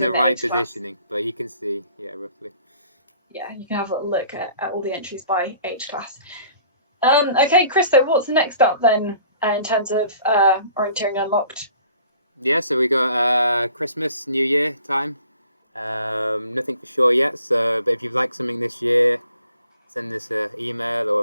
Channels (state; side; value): inverted; both; correlation -0.54